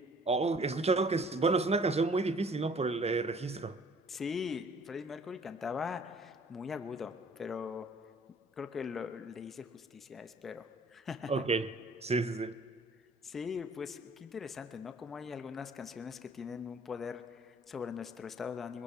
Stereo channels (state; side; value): normal; both; correlation 0.55